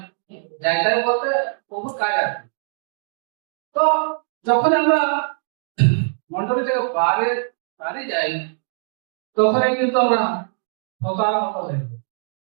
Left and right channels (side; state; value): left; silent; digital silence